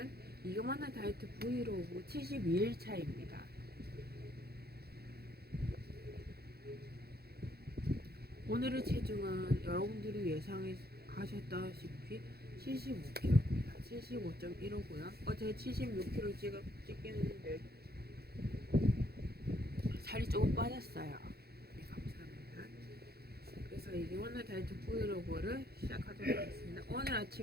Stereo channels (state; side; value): late; left; 0.46 ms